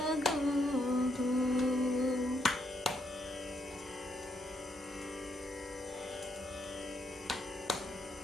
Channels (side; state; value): both; normal; correlation 0.76